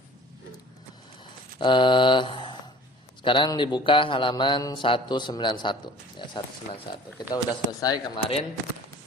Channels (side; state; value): both; normal; correlation 0.47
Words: Sekarang dibuka halaman 191 ya, 191. Kita udah selesai kemarin